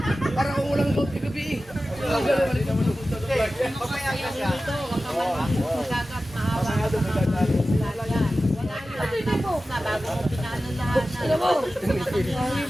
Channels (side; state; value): both; normal; correlation 0.95